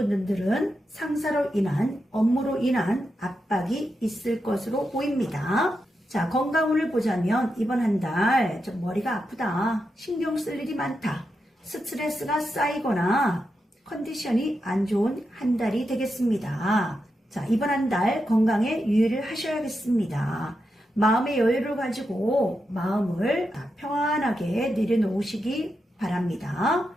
상사로 인한 업무로 인한 압박이 있을 것으로 보입니다. 자, 건강운을 보자면 이번 한 달 좀 머리가 아프다, 신경 쓸 일이 많다, 스트레스가 쌓이거나 컨디션이 안 좋은 한 달이 되겠습니다. 자, 이번 한 달 건강에 유의를 하셔야겠습니다. 마음의 여유를 가지고 마음을 평안하게 내려놓으시기 바랍니다.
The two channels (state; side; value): normal; both; correlation 0.87